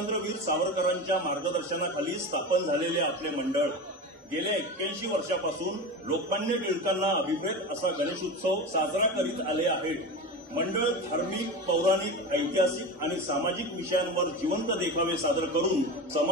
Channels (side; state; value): both; normal; correlation 0.26